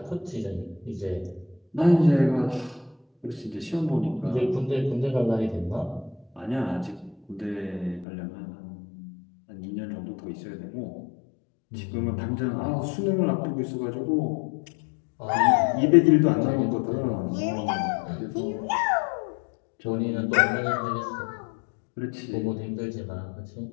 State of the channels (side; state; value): right; drops out; at 8.1 s